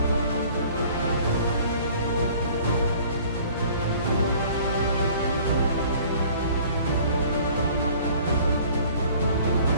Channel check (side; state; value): both; inverted; correlation -0.51